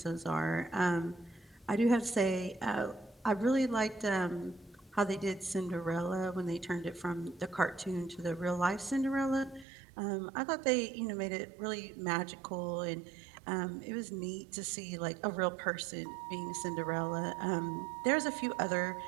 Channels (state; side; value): drops out; left; at 9.7 s